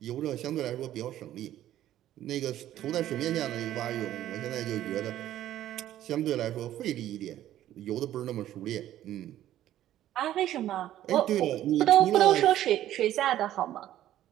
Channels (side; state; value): left; quieter; 12.8 dB